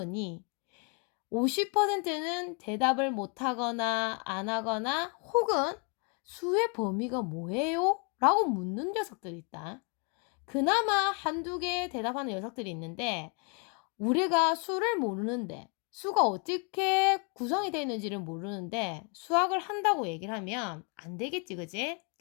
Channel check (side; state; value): right; quieter; 36.4 dB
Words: 50%는 대답을 못하거나 안 하거나 혹은 수의 범위가 뭐예요? 라고 묻는 녀석들이 있다. 그나마 한두 개 대답하는 녀석들이 있는데 우리가 수를 모르는데 수가 어떻게 구성이 되어 있는지를 모르는데 수학을 한다고 얘기를 하면 안 되겠지, 그지?